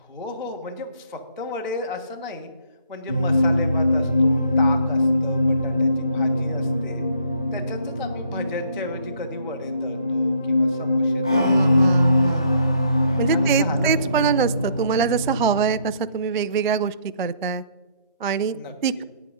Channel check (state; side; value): inverted; both; correlation -0.65